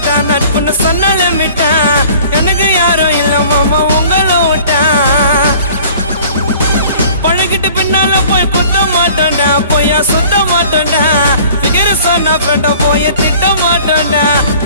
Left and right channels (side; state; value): both; inverted; correlation -0.49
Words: நட்புன்னு சொன்னாலே மிட்டா எனக்கு யாரும் இல்ல மாமா உங்களை விட்டா பழகிட்டு பின்னால போய் குத்த மாட்டோண்டா பொய்யா சுத்த மாட்டோண்டா பிகர சொன்னா பெண்ட போய் திட்ட மாட்டோண்டா